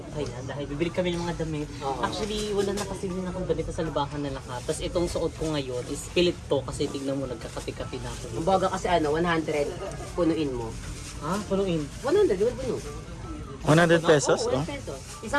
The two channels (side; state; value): both; identical; correlation 1.00